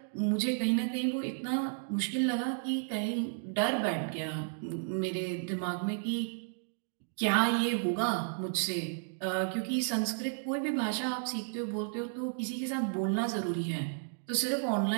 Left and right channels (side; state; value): left; silent; digital silence